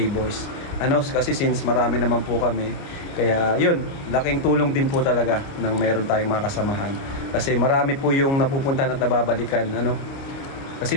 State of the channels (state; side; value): late; right; 29 ms